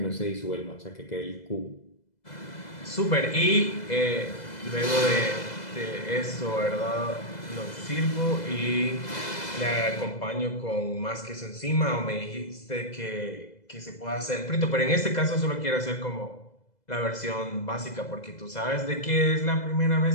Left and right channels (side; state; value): right; late; 2.0 ms